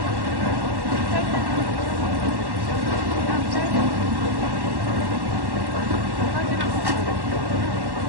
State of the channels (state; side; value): late; left; 1.1 ms